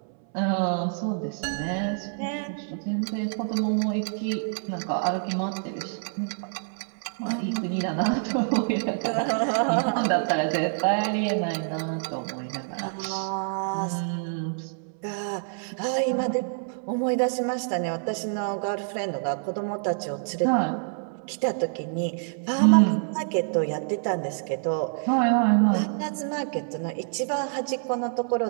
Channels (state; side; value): silent; left; 60 dB below the other